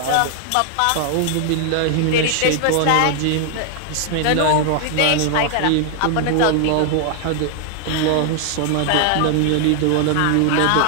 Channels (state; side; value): different; both; correlation 0.00